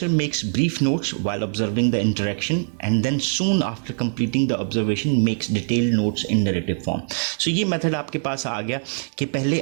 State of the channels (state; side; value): silent; left; digital silence